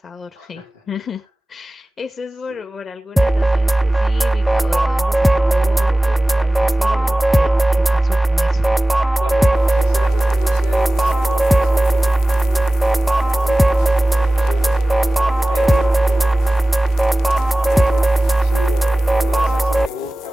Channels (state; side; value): normal; both; correlation 0.97